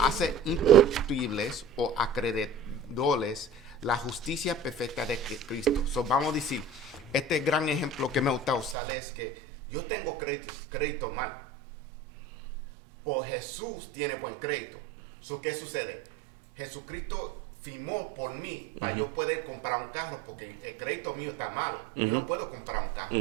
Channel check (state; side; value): drops out; left; at 8.8 s